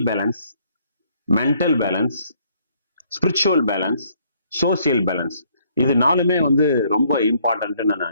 balance, mental balance, spiritual balance, social balance. இது 4மே வந்து ரொம்ப இம்பார்ட்டன்ட்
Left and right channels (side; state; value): both; inverted; correlation -0.66